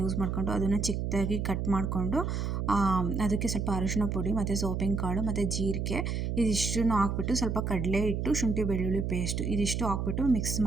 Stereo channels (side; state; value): right; noise; hum, 1 dB below the sound